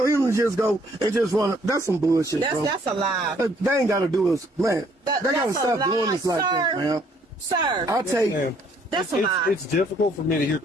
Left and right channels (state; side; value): normal; both; correlation 0.64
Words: him to just go and just run. That's some bullshit, bro. That's a lie. They ain't got to do this. Man, they got to that's a stop doing lie, this like that, sir. man. Sir. I take Ma'am, That's a lie. It's difficult for me to hear